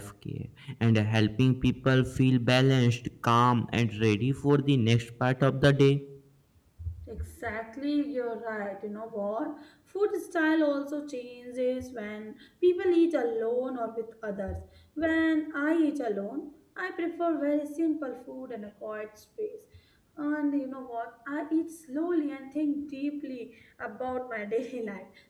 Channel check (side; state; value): both; identical; correlation 1.00